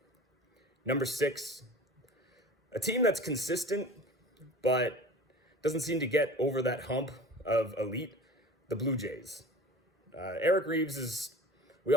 Number 6, a team that's consistent, but doesn't seem to get over that hump of elite, the Blue Jays. Eric Reeves we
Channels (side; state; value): both; normal; correlation 0.40